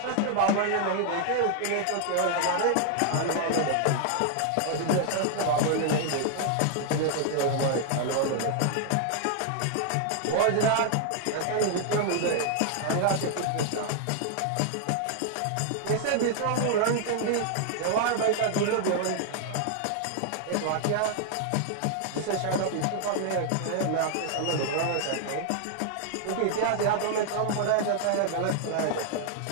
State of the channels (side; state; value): both; different; correlation 0.00